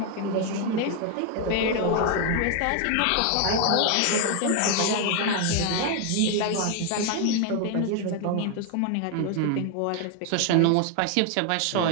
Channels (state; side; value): different; both; correlation 0.01